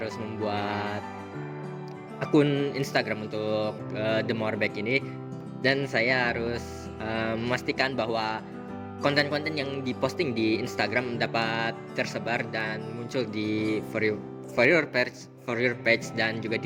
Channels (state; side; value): identical; both; correlation 1.00